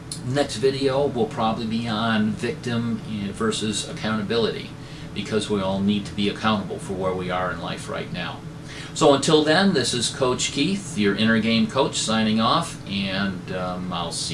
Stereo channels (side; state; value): both; identical; correlation 1.00